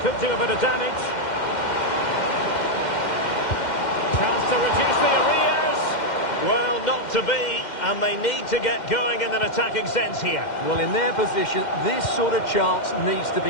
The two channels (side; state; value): right; late; 2.1 ms